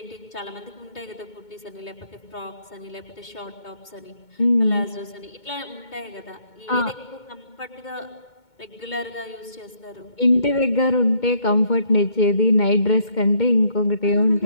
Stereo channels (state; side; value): late; right; 2.2 ms